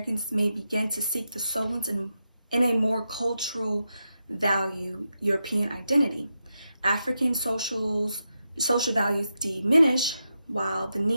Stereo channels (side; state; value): both; inverted; correlation -0.87